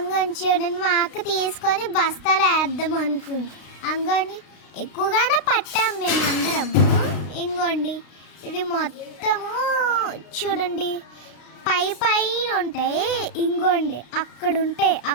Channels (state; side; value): late; right; 33 ms